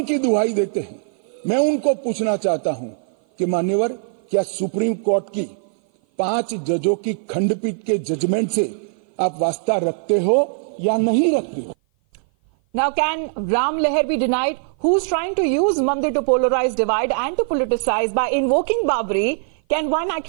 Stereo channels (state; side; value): silent; left; 56 dB below the other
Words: की दुहाई देते हैं। मैं उनको पूछना चाहता हूं कि मान्यवर, क्या सुप्रीम कोर्ट की 5 जजों की खंडपीठ के जजमेंट से आप वास्ता रखते हो या नहीं रखते हो? Now, can Ram Leher be denied? Who's trying to use Mandir to polarize, divide and to politicize by invoking Babri? Can one